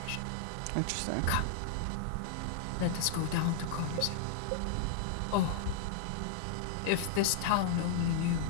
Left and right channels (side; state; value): both; different; correlation -0.01